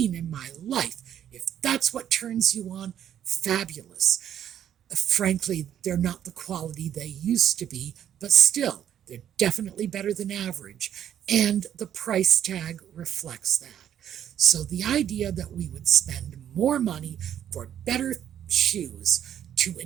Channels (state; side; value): quieter; left; 10.1 dB